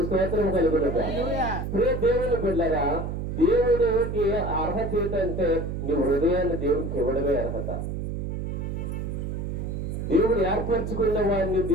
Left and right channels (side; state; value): right; noise; hum, 4 dB below the sound